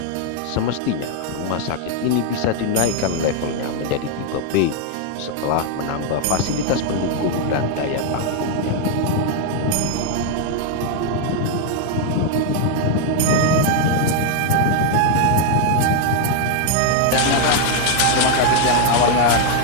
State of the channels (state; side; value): different; both; correlation 0.00